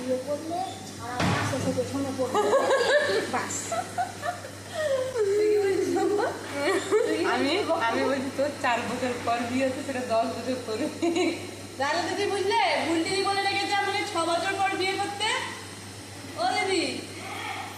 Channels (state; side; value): identical; both; correlation 1.00